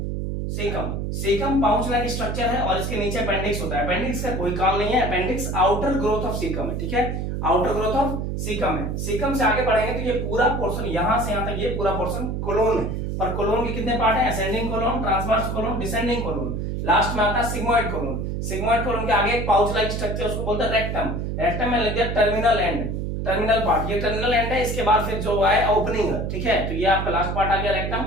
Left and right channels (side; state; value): right; noise; hum, 3 dB below the sound